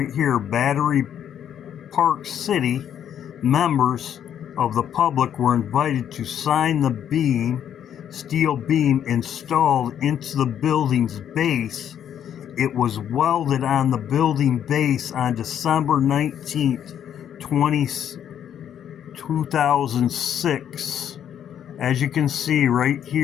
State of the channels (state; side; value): quieter; right; 9.6 dB